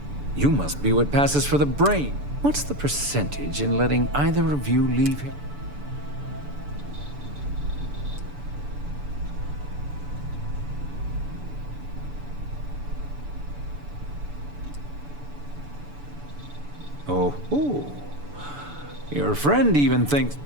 must be what passes for the brain. What's the percentage in letting either of you leave here? Oh. Your friend even thinks...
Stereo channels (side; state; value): left; late; 6.9 ms